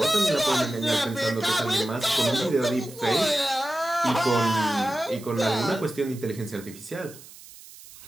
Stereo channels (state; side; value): noise; right; hiss, 19 dB below the sound